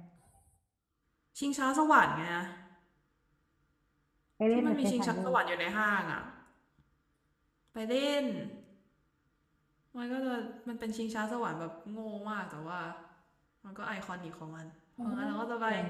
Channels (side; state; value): both; identical; correlation 1.00